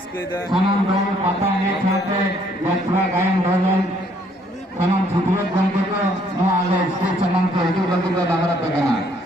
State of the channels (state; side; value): normal; both; correlation 0.65